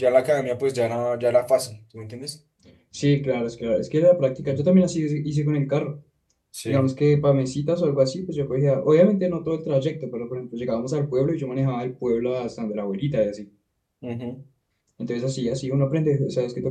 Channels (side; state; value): both; identical; correlation 1.00